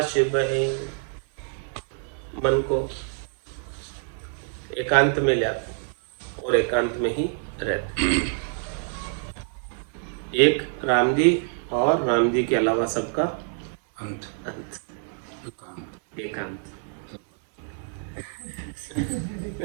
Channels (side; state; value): left; silent; 61 dB below the other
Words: बहे। मन को एकांत में ले आते और एकांत में ही रहते। एक राम जी और राम जी के अलावा सबका अंत अंत, एकांत।